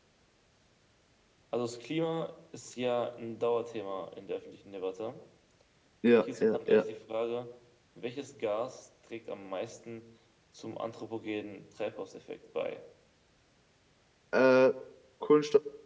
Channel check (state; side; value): identical; both; correlation 1.00